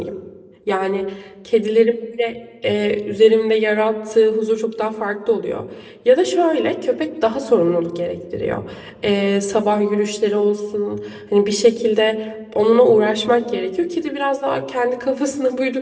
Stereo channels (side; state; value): both; identical; correlation 1.00